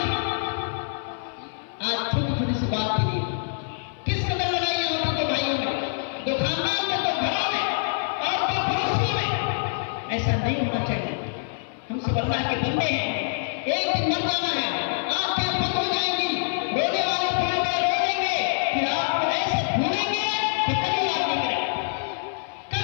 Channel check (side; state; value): right; silent; 56 dB below the other